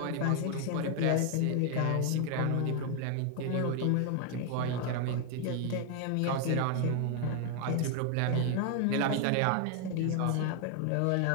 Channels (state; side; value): different; both; correlation 0.00